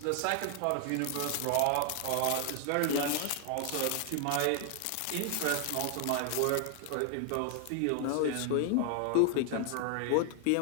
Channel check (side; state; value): both; different; correlation 0.00